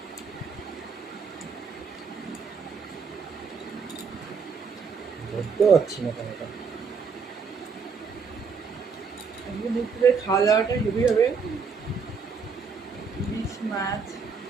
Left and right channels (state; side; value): quieter; left; 5.5 dB